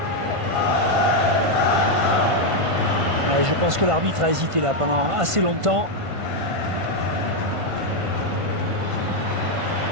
Ouais, je pense que l'arbitre a hésité là pendant assez longtemps.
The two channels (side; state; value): left; late; 1.5 ms